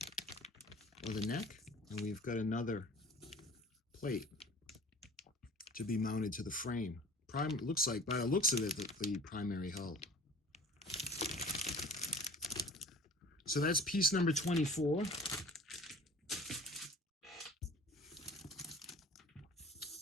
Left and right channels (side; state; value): both; normal; correlation 0.44